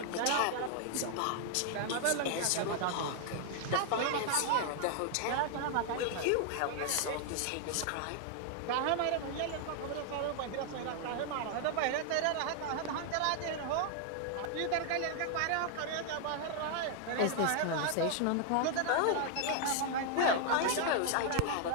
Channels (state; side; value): different; both; correlation 0.00